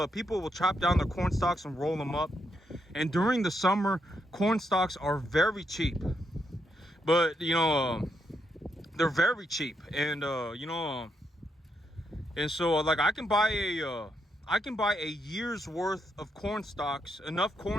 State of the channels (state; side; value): normal; both; correlation 0.79